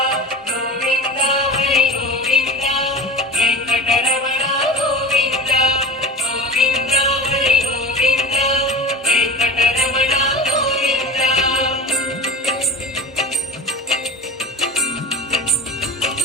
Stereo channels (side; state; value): both; normal; correlation 0.31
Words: గోవింద, హరి గోవింద, వెంకటరమణ గోవింద గోవింద, హరి గోవింద, వెంకటరమణ గోవింద.